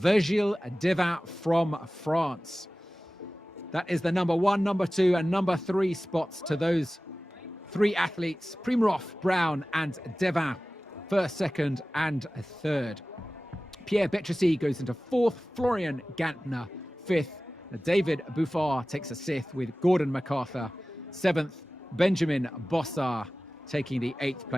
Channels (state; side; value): normal; both; correlation 0.96